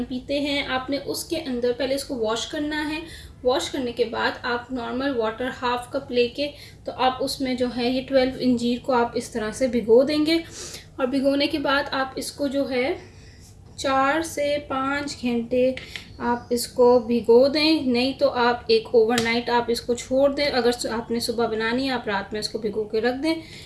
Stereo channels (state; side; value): identical; both; correlation 1.00